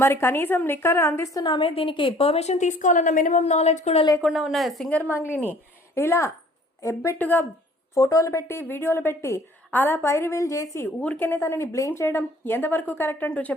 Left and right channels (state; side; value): normal; both; correlation 0.55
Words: మరి కనీసం లిక్కర్ అందిస్తున్నామే, దీనికి పర్మిషన్ తీసుకోవాలన్న మినిమం నాలెడ్జ్ కూడా లేకుండా ఉన్న సింగర్ మంగ్లీని ఇలా ఎబ్బెట్టుగా ఫోటోలు పెట్టి వీడియోలు పెట్టి అలా పైరివీల్ చేసి ఊరికేనే తనని బ్లేమ్ చేయడం ఎంతవరకు కరెక్ట్ అంటూ